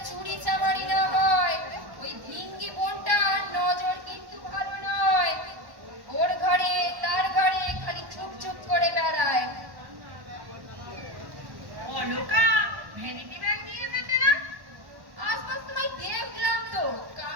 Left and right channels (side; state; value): left; late; 1.1 ms